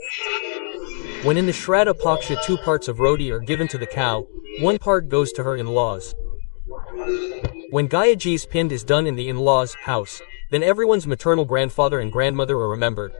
When in the Shradha Paksha 2 parts of roti are given to the cow, 1 part goes to her in-laws. When Gayaji's pind is done in the in-laws' house, then everyone's maternal grandfather and grandmother are remembered.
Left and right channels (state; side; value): silent; right; digital silence